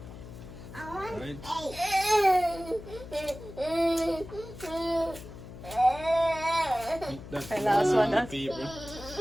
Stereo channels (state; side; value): noise; left; hum, 14 dB below the sound